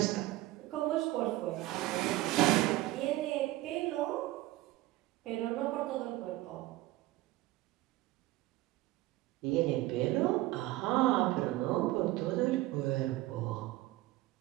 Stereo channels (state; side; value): quieter; left; 17.5 dB